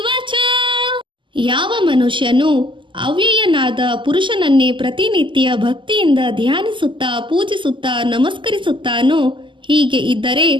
ಚ. ಯಾವ ಮನುಷ್ಯನು ಅವ್ಯಯನಾದ ಪುರುಷನನ್ನೇ ಪ್ರತಿನಿತ್ಯ ಭಕ್ತಿಯಿಂದ ಧ್ಯಾನಿಸುತ್ತಾ ಪೂಜಿಸುತ್ತಾ ನಮಸ್ಕರಿಸುತ್ತಾನೋ, ಹೀಗೆ ಇದ್ದರೆ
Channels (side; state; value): left; late; 0.24 ms